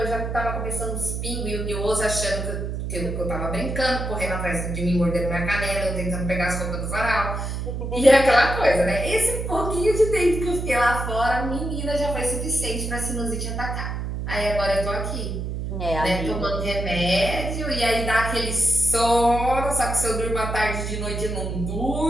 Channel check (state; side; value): noise; right; hum, 4 dB below the sound